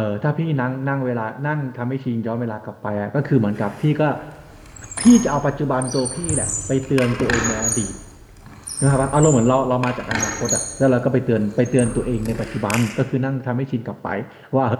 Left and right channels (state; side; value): identical; both; correlation 1.00